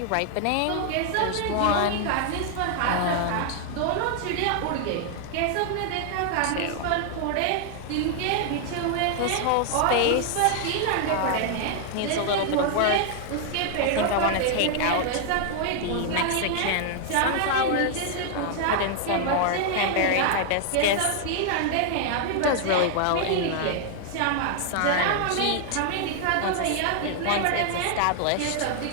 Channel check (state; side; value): different; both; correlation 0.00